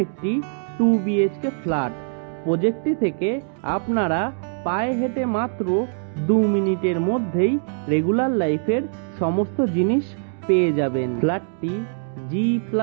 একটি 2 BHK ফ্ল্যাট। প্রজেক্টটি থেকে আপনারা পায়ে হেঁটে মাত্র 2 মিনিটের মধ্যেই রেগুলার লাইফের সমস্ত জিনিস পেয়ে যাবেন। ফ্ল্যাটটি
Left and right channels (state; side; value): silent; left; digital silence